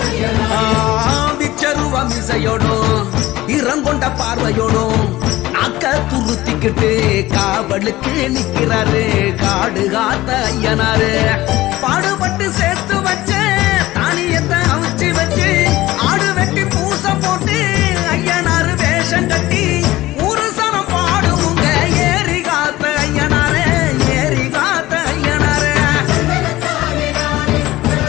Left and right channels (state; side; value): quieter; right; 17.2 dB